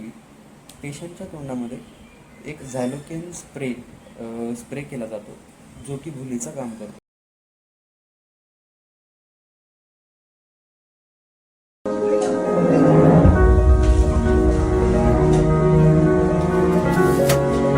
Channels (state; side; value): identical; both; correlation 1.00